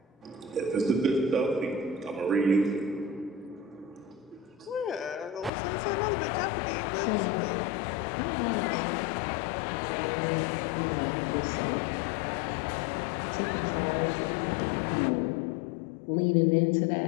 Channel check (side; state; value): right; drops out; at 5.5 s